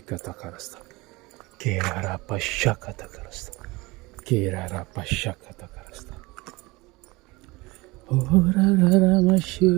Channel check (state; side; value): quieter; left; 23.0 dB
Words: Kerarapashakatakarasta. Kerarapashakatakarasta. Orararamashi.